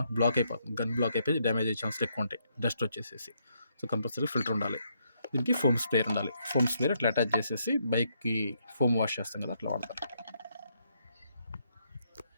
బ్లాక్ అయిపోతుంది. గన్ బ్లాక్ అయిపోయి డ్యామేజ్ అయ్యే ఛాన్సులు ఎక్కువ ఉంటాయి, డస్ట్ వచ్చేసేసి. సో కంపల్సరీ ఫిల్టర్ ఉండాలి. దీనికి ఫోమ్ స్ప్రేయర్ ఉండాలి. ఫోమ్ స్ప్రేయర్ అట్లా అటాచ్ చేసేసి బైక్కి ఫోమ్ వాష్ చేస్తాం కదా, అట్లా వాడతారు.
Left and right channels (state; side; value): inverted; both; correlation -0.75